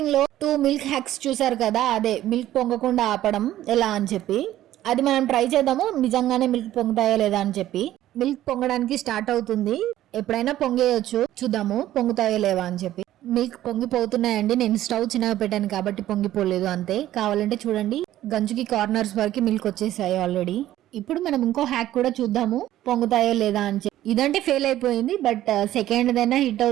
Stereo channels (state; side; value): quieter; left; 13.5 dB